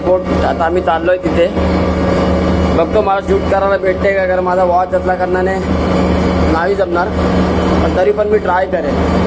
आता आम्ही चाललोय तिथे. बघतो मला शूट करायला भेटते का, कारण माझा वॉच असल्या कारणाने नाही जमणार, पण तरी पण मी ट्राय करेन.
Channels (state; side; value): identical; both; correlation 1.00